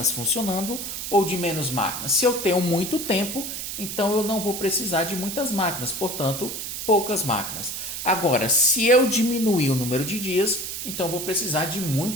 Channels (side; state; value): right; noise; hiss, 6 dB below the sound